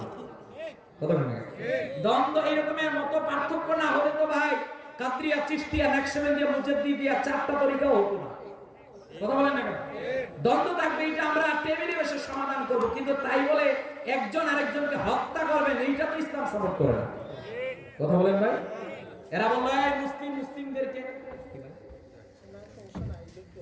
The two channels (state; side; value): identical; both; correlation 1.00